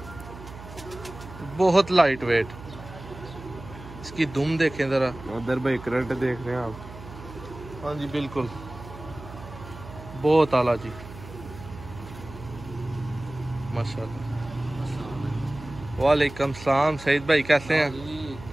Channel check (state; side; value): noise; right; hum, 15 dB below the sound